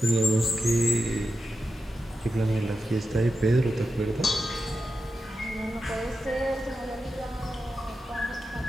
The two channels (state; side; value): normal; both; correlation 0.90